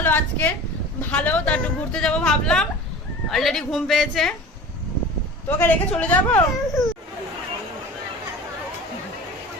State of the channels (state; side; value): normal; both; correlation 0.38